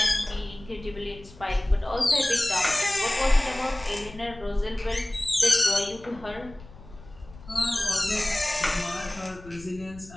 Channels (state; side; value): noise; left; rumble, 19 dB below the sound